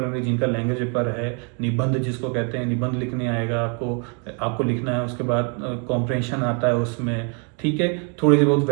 भी, जिनका लैंग्वेज पेपर है। निबंध जिसको कहते हैं, निबंध लिखने आएगा आपको लिखना है। उसके बाद कॉम्प्रिहेंशन आता है उसमें, ठीक है। थोड़ी सी बहुत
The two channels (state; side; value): quieter; left; 37.6 dB